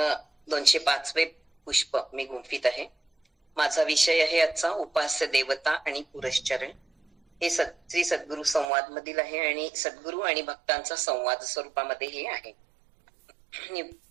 205वे पुष्प मी गुंफित आहे. माझा विषय आहे आजचा उपास्य देवता आणि पुरश्चरण. हे श्री सद्गुरु संवाद मधील आहे आणि सद्गुरु आणि भक्तांचा संवाद स्वरूपामध्ये हे आहे. मी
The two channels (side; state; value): left; drops out; at 8.7 s